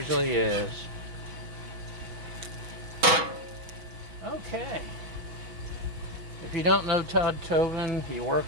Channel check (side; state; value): left; late; 6.1 ms